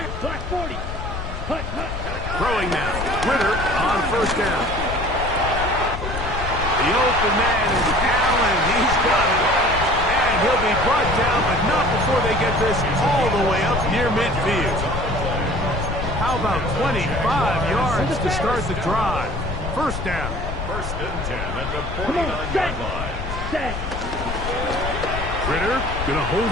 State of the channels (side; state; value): left; noise; rumble, 6 dB below the sound